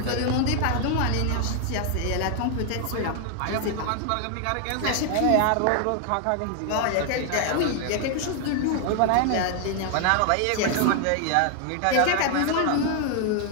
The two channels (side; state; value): both; different; correlation 0.00